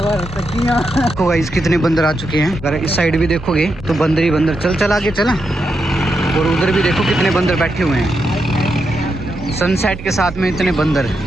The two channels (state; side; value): normal; both; correlation 0.84